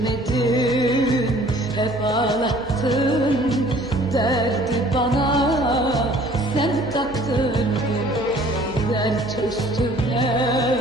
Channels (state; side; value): noise; right; hum, 17 dB below the sound